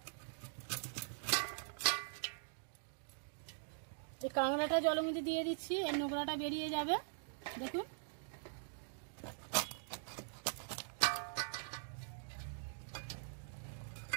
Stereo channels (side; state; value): left; silent; digital silence